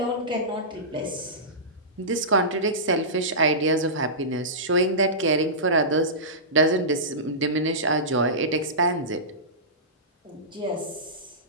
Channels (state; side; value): normal; both; correlation -0.19